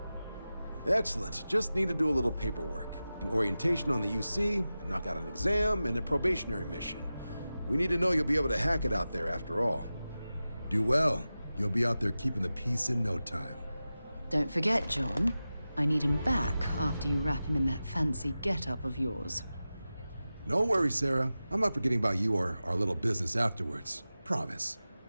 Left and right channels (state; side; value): inverted; both; correlation -0.95